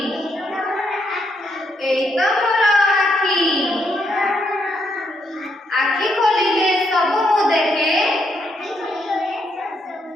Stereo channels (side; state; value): both; normal; correlation 0.77